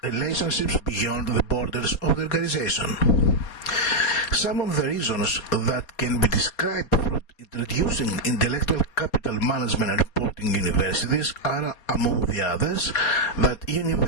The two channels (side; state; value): right; late; 4.2 ms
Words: relationships beyond the borders of the organization. Some of the reasons that can be described for introducing intellectual capital management and reporting in universities are, among the others, that